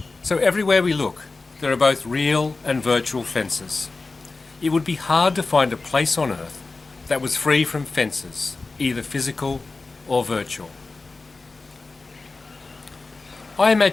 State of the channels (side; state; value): right; quieter; 3.7 dB